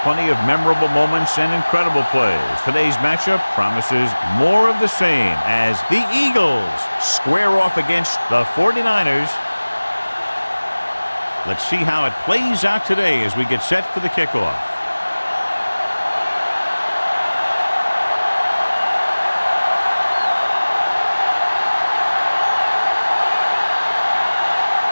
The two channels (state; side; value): inverted; both; correlation -1.00